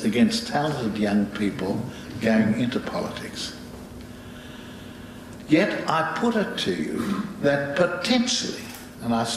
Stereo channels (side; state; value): both; identical; correlation 1.00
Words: against talented young people going into politics. Yet I put it to you that potentially, and I